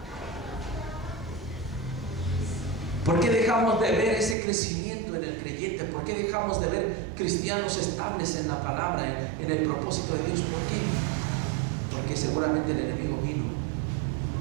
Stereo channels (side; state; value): left; drops out; at 4.4 s